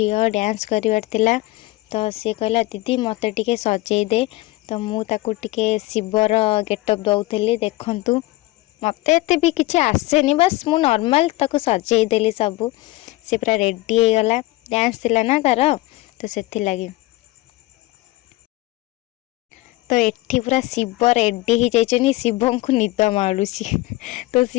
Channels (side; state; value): right; quieter; 19.2 dB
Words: डांस करिवार तिला। तो सी कहला दीदी मते टिके सजेई दे। तो मु ताकू टिके शिवर गेटअप दउथली। देखंतु मते एते भी किछि आसेनी, बस मु नॉर्मल ताकू सजेई देली सबू। से पूरा रेडी हो गला, डांस थिला ना तार, तो सेथि लागी। तो एठी पूरा शिव रेडी ही जाइछनी, शिवं को निद माडुची। तो